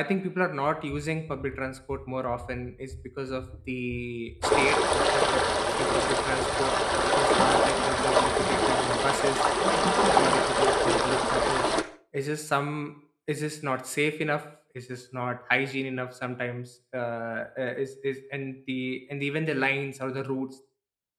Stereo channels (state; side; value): identical; both; correlation 1.00